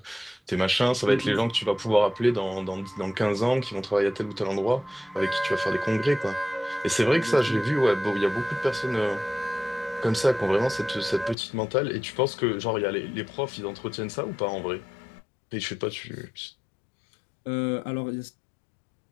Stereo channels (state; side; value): drops out; right; at 11.4 s